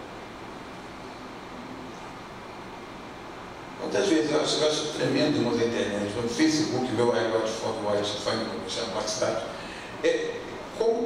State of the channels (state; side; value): identical; both; correlation 1.00